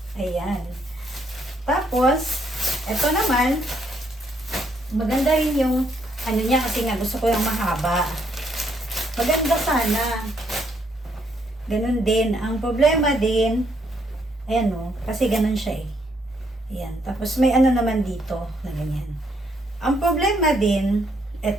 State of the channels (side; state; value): both; normal; correlation 0.72